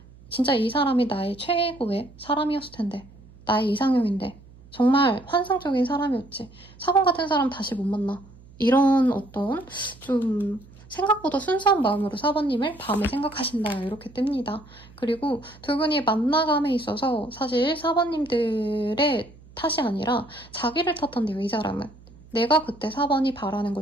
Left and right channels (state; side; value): noise; right; hum, 23 dB below the sound